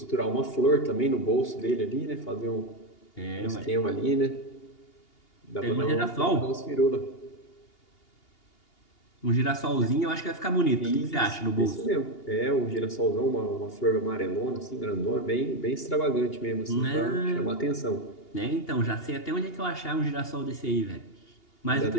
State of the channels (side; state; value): right; late; 2.8 ms